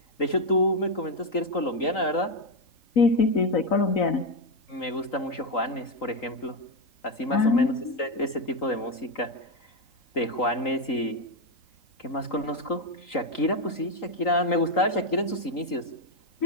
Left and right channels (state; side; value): late; right; 3.8 ms